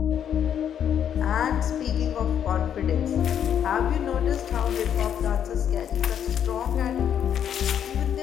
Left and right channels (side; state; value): right; quieter; 9.1 dB